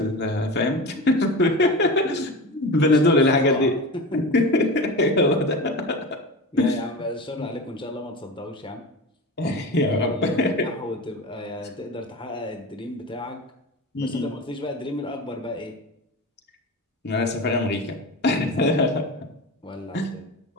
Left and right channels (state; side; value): normal; both; correlation 0.28